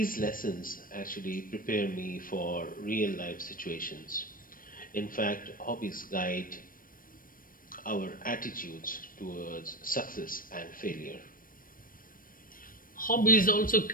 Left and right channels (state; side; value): late; right; 0.41 ms